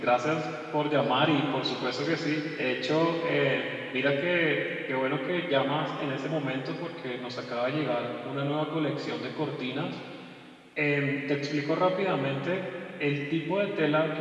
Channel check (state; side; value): identical; both; correlation 1.00